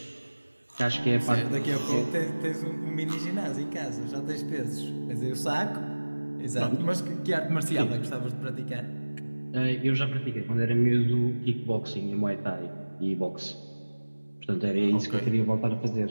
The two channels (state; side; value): inverted; both; correlation -1.00